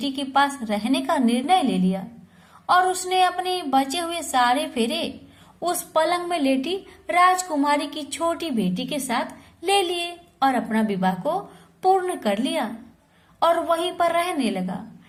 के पास रहने का निर्णय ले लिया और उसने अपने बचे हुए सारे फेरे उस पलंग में लेटी राजकुमारी की छोटी बेटी के साथ ले लिए और अपना विवाह को पूर्ण कर लिया और वहीं पर रहने लगा।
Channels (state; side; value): identical; both; correlation 1.00